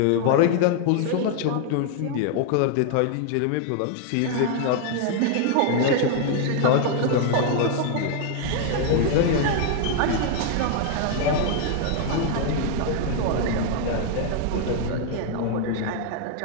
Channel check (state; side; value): different; both; correlation 0.00